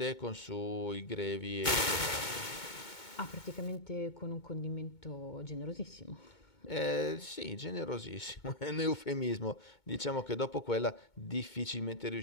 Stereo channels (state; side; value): late; right; 2.2 ms